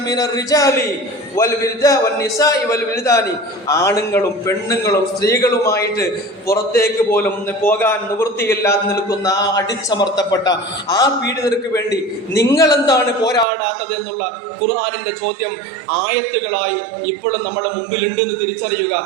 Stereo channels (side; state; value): left; drops out; at 13.5 s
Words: മിനർ റിജാലി വൽ നിസാഇ വൽ വിൽദാനി, ആണുങ്ങളും പെണ്ണുങ്ങളും സ്ത്രീകളുമായിട്ട് പുറത്തേക്ക് പോലും പോകാൻ നിവൃത്തിയില്ലാതെ നിൽക്കുന്ന ആ അടിച്ചമർത്തപ്പെട്ട ആ പീഡിതർക്ക് വേണ്ടി നിങ്ങൾ എന്താണ് പോരാടാത്തത് എന്നുള്ള ഖുർആനിന്റെ ചോദ്യം ആയത്തുകളായി ഇപ്പോഴും നമ്മുടെ മുമ്പിലുണ്ട് എന്ന് തിരിച്ചറിയുക.